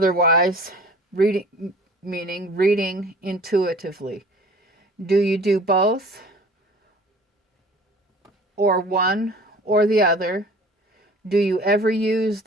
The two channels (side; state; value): both; normal; correlation 0.46